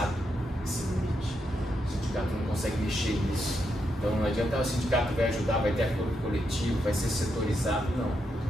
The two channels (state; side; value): normal; both; correlation 0.82